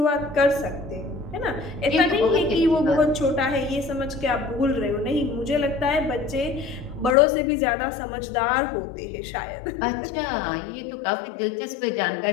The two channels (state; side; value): drops out; right; at 7.2 s